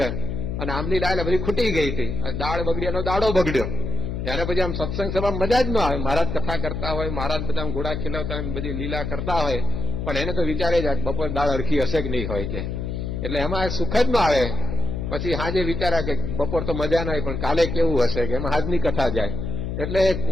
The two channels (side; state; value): left; noise; hum, 4 dB below the sound